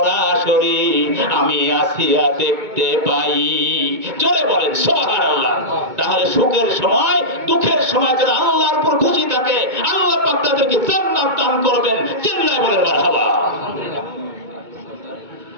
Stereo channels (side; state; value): left; late; 2.2 ms